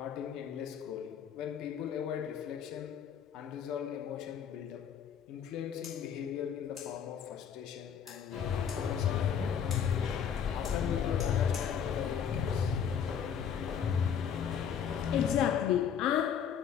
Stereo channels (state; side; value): quieter; right; 8.0 dB